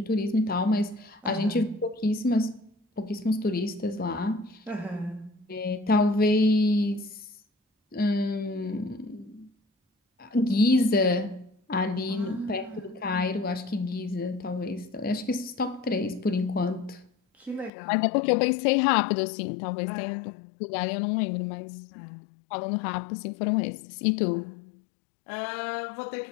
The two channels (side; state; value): right; drops out; at 17.7 s